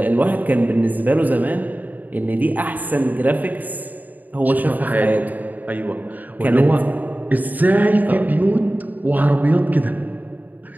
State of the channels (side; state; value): left; late; 0.082 ms